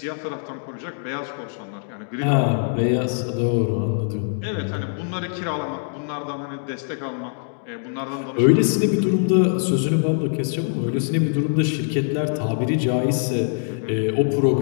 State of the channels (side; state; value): right; silent; digital silence